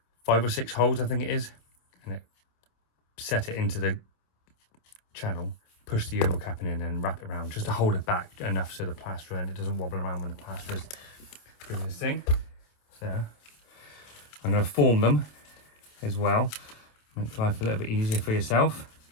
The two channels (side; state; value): right; late; 27 ms